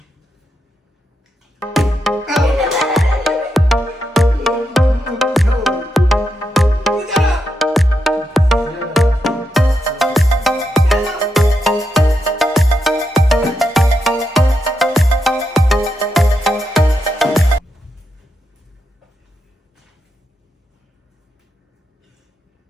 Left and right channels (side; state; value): both; normal; correlation 0.84